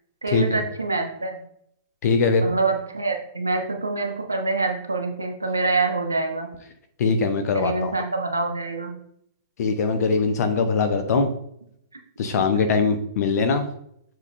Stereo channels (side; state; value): both; inverted; correlation -0.52